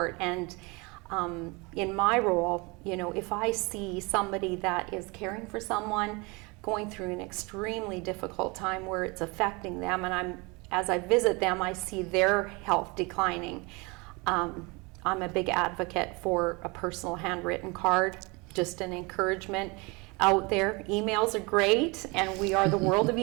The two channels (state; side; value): quieter; left; 27.3 dB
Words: And in my role, you know, if I see somebody that is caring for someone going through an extremely difficult time where it's affecting them, and as I visit them, I see their health declining, I'm a big advocate for a personal handwritten card, just an encouragement out there. Emails are great, and we are the world of